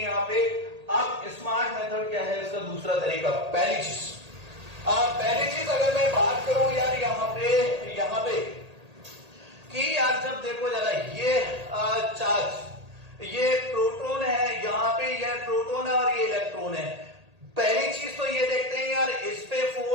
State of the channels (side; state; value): left; late; 1.8 ms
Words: पे। अब स्मार्ट मेथड क्या है इसका दूसरा तरीका, पहली चीज अगर मैं बात करूं यार यहाँ पे कि यार जब देखो जरा ये चार्ज, ये प्रोटॉन है, यहाँ पे यह प्रोटॉन है और ये इलेक्ट्रॉन है। पहली चीज तो ये देखते हैं यार इस पे